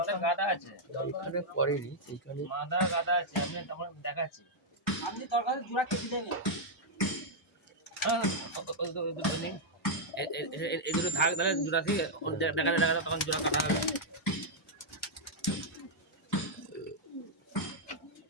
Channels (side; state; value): both; normal; correlation -0.04